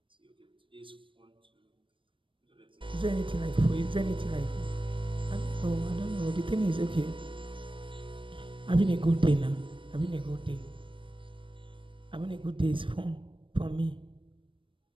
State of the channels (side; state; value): left; late; 0.25 ms